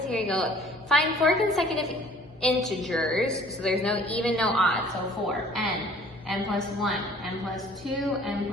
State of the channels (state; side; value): normal; both; correlation 0.53